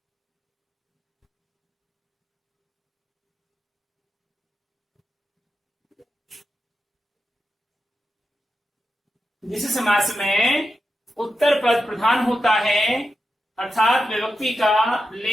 जिस समास में उत्तर पद प्रधान होता है अर्थात विभक्ति का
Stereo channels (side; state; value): both; normal; correlation 0.89